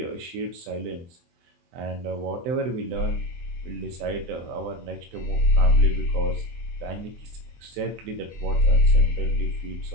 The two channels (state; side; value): late; left; 24 ms